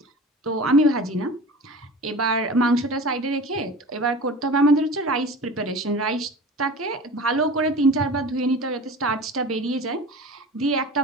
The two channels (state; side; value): normal; both; correlation 0.36